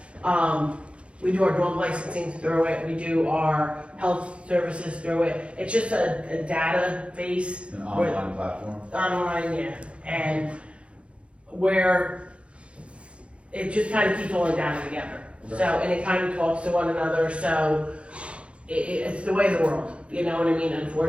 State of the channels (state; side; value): late; left; 0.060 ms